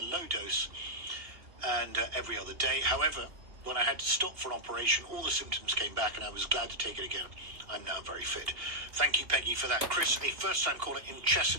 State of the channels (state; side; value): late; left; 2.7 ms